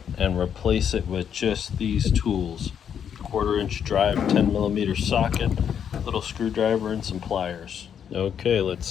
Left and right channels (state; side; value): quieter; right; 8.3 dB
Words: and replace it with just these tools: 1/4 inch drive, 10mm socket, little screwdriver, and some pliers. Okay, let's